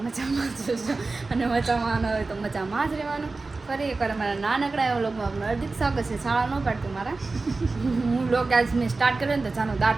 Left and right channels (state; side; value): quieter; left; 3.7 dB